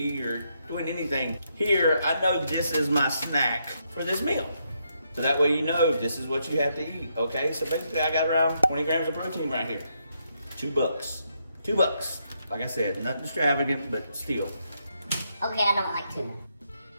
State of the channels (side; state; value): both; inverted; correlation -0.78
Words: or doing anything. Here, I know this is my snack for this meal. So that way you know this is what you have to eat, okay? So basically I got around 20 grams of protein right here. $2. $2. Like I said, nothing extravagant, but still. Okay, I don't like tuna.